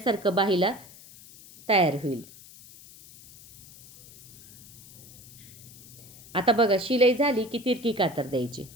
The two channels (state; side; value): noise; left; hiss, 20 dB below the sound